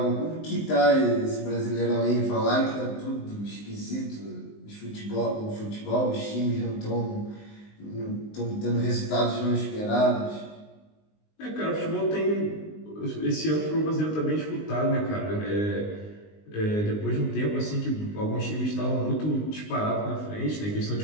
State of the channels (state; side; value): late; right; 19 ms